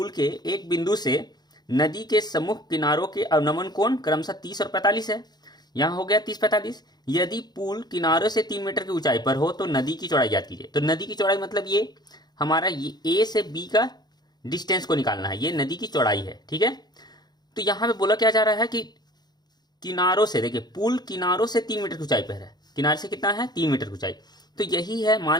के एक बिंदु से नदी के सम्मुख किनारों के अवनमन कोण क्रमशः 30 और 45 है। यहाँ हो गया 30-45। यदि पुल किनारों से 3 मीटर की ऊंचाई पर हो तो नदी की चौड़ाई ज्ञात कीजिए। तो नदी की चौड़ाई मतलब ये हमारा ये ए से बी का डिस्टेंस को निकालना है, ये नदी की चौड़ाई है। ठीक है, तो यहाँ पे बोला क्या जा रहा है कि किनारों से, देखिए पुल किनारों से 3 मीटर की ऊंचाई पर है। किनारे से कितना है, 3 मीटर की ऊंचाई। तो यही है,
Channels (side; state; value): right; late; 0.20 ms